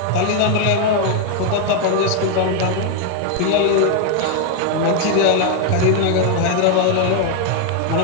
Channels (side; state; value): both; different; correlation 0.01